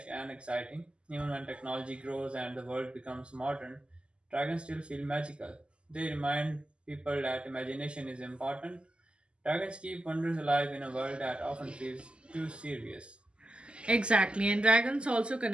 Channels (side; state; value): left; late; 0.052 ms